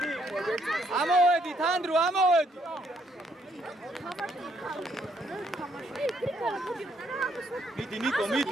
ამოვედით, ანდრო, ამოვედით. მიდი, ნიკო,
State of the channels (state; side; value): normal; both; correlation 0.71